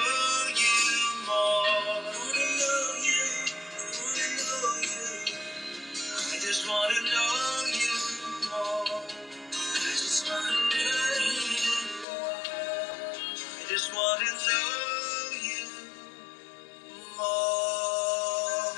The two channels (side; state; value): right; drops out; at 12.1 s